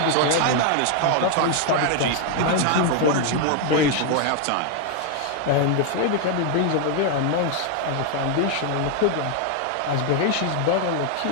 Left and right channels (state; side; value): different; both; correlation 0.00